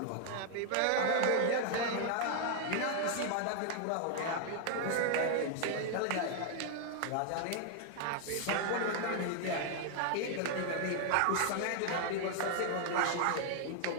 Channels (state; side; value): different; both; correlation 0.00